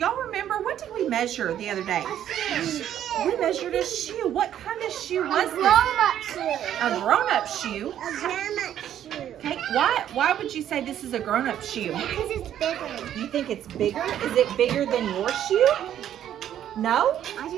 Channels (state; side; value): quieter; left; 10.8 dB